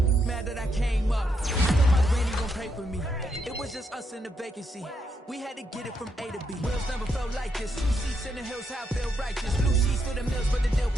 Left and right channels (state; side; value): normal; both; correlation 0.79